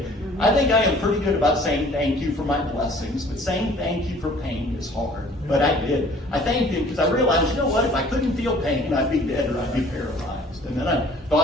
I think I am pretty good about saying thank you for my blessings, but saying thank you for pain is hard. But I did. I thanked him because I realized, you know what, if I couldn't feel pain, I'd be dead or I'd be paralyzed. And then I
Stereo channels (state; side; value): normal; both; correlation 0.53